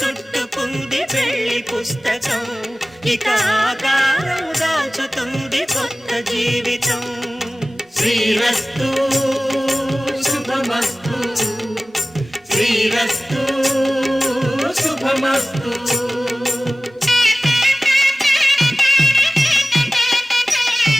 పెళ్లి పుస్తకం ఇక ఆకారం దాచుతుంది కొత్త జీవితం శ్రీరస్తు శుభమస్తు శ్రీరస్తు శుభమస్తు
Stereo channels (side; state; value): both; normal; correlation 0.97